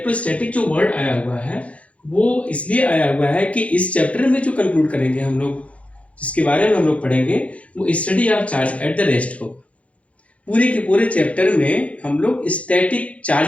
जो वर्ड आया हुआ है वो इसलिए आया हुआ है कि इस चैप्टर में जो कंक्लूड करेंगे हम लोग, जिसके बारे में हम लोग पढ़ेंगे, वो study of charge at the rest होगा। पूरे के पूरे चैप्टर में हम लोग स्टैटिक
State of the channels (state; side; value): late; right; 0.064 ms